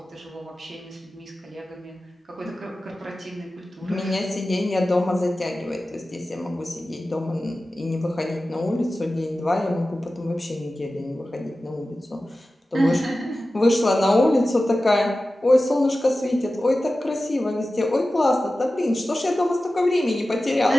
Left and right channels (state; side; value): normal; both; correlation 0.95